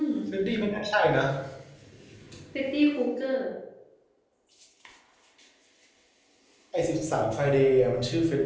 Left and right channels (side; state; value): both; identical; correlation 1.00